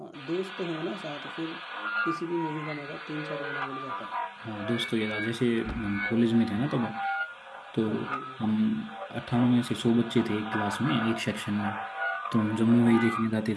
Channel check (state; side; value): identical; both; correlation 1.00